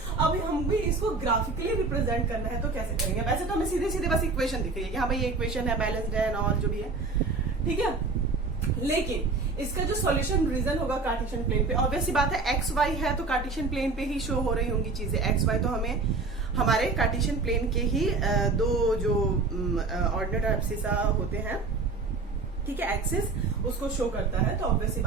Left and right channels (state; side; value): quieter; left; 3.9 dB